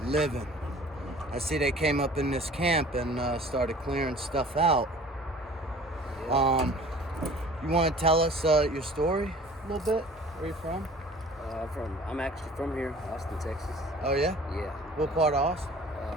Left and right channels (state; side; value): normal; both; correlation 0.47